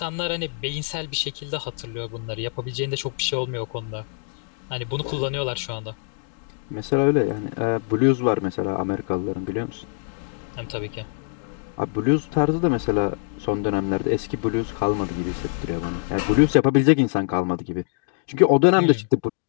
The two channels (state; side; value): silent; right; digital silence